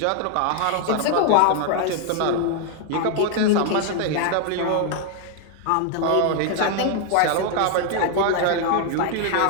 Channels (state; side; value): different; both; correlation 0.00